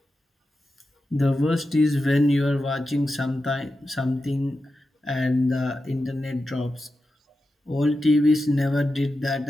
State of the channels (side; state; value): both; normal; correlation 0.91